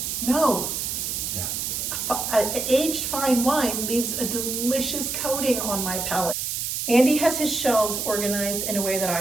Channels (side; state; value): right; noise; hiss, 2 dB below the sound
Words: No. Yeah. A aged fine wine leaves a delicious coating on my palate. Andy has his shelves organized in a way that I